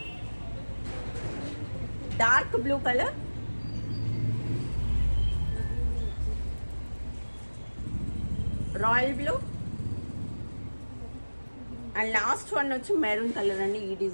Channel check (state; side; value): inverted; both; correlation -1.00